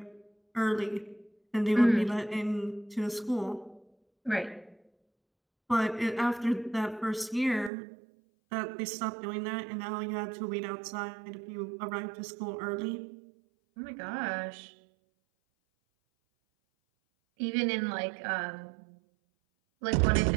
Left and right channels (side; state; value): left; drops out; at 7.7 s